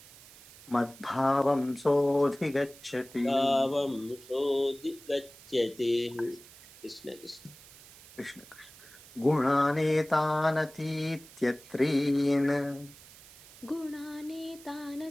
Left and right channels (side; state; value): right; noise; hiss, 20 dB below the sound